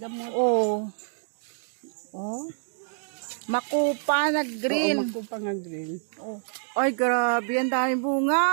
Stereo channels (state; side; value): silent; left; digital silence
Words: Oh. Oh. Makupa na green. Oo, makupa nga green. Oh. Ay, grabe, ang daming